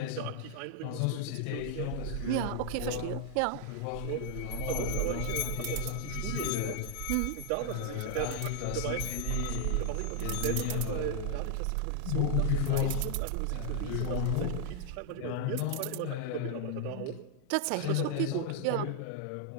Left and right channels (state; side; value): different; both; correlation 0.00